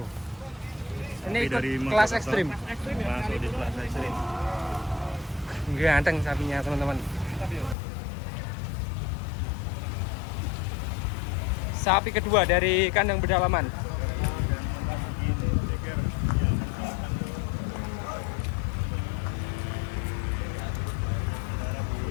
Ini Sapi ikut dari kelas Mojokerto. ekstrim. Masuk di kelas ekstrim. Ganteng sapinya teman-teman. Sapi kedua dari kandang pedalaman.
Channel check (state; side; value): drops out; right; at 7.8 s